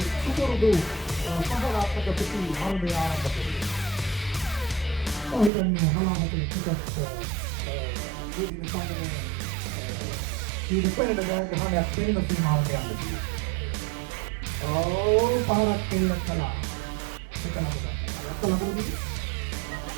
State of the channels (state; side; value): drops out; left; at 5.5 s